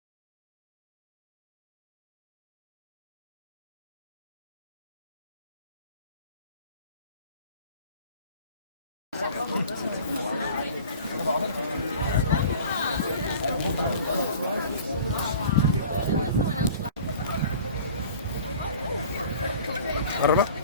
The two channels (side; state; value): both; inverted; correlation -0.44